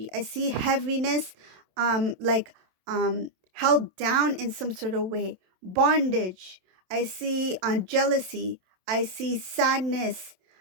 I see heaviness, like held down in some sort of way. Bondage. I see jealousy. I see sadness.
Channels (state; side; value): late; left; 27 ms